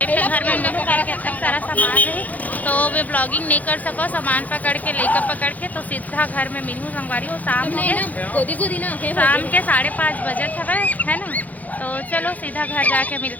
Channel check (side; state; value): right; late; 0.079 ms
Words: घर में मेरे करके तक सारा सामान है तो वे ब्लॉगिंग नहीं कर सको। सामान पकड़ के लेकर पकड़ के तो सीधा घर में मिलूँ संगवारी हो। शाम हो गए शाम के 5:30 बजे है ना। तो चलो सीधा घर जाके